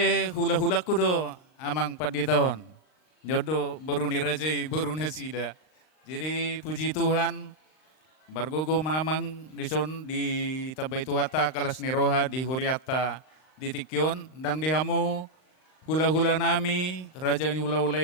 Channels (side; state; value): right; late; 39 ms